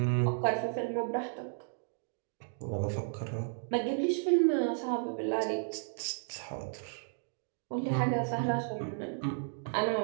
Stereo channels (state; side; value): silent; left; digital silence